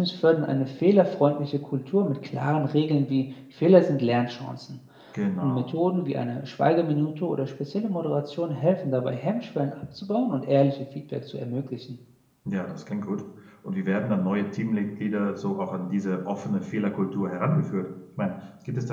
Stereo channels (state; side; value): identical; both; correlation 1.00